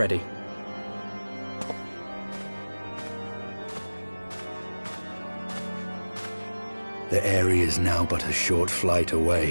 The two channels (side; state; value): both; inverted; correlation -1.00